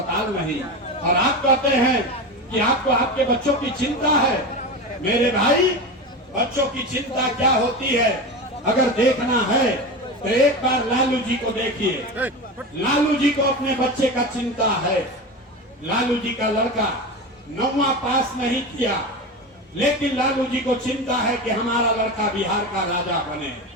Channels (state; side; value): normal; both; correlation 0.24